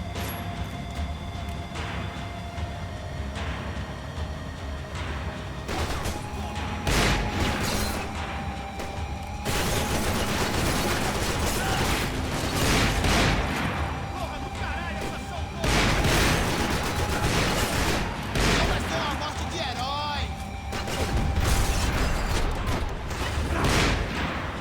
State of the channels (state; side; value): identical; both; correlation 1.00